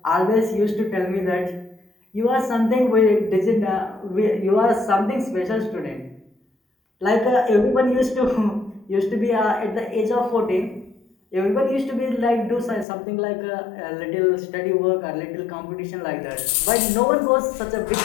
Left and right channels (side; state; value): right; drops out; at 12.9 s